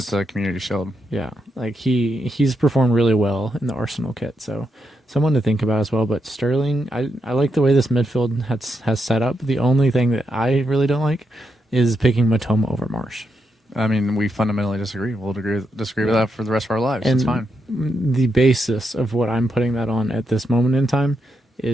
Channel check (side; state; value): both; normal; correlation 0.83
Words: the Community Shield. Yeah, like he's performed really well in the Arsenal kit, so someone to think about as well. But Sterling, I like the way this midfield has set up. The only thing that I really don't like is picking Matoma over Marsh. I mean, we fundamentally disagree. We'll disagree with that for the rest of our lives. And it's fine. The basis of what I'm putting that on at this moment in time